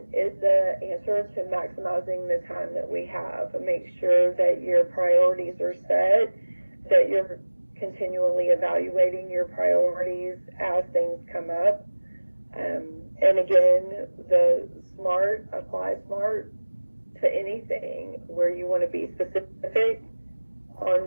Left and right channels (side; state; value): both; inverted; correlation -1.00